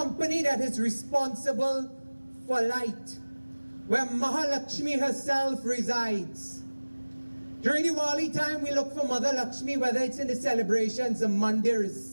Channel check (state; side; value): inverted; both; correlation -1.00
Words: that is responsible for light, where Mahalakshmi herself resides. During Diwali time, we look for Mother Lakshmi, whether it's in the celebrations, the